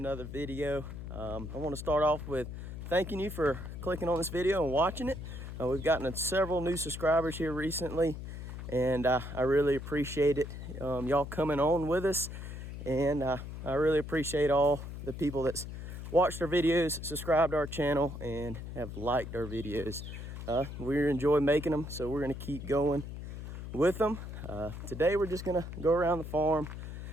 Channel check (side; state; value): left; noise; hum, 9 dB below the sound